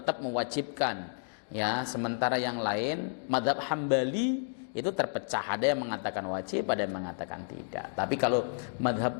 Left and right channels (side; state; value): right; silent; digital silence